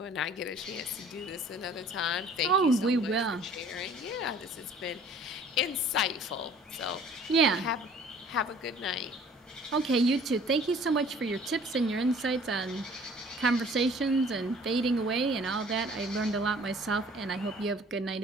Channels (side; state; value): both; normal; correlation 0.52